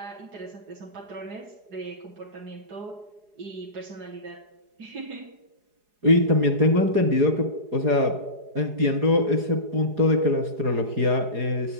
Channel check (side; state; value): left; late; 4.8 ms